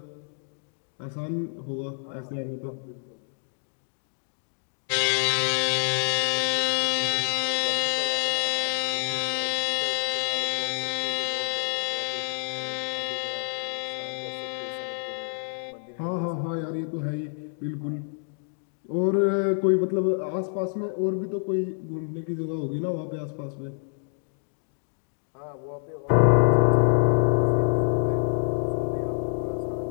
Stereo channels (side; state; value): right; silent; digital silence